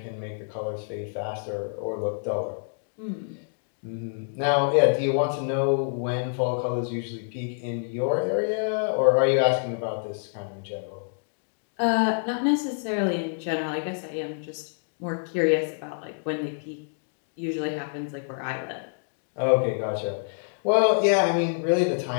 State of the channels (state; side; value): silent; right; digital silence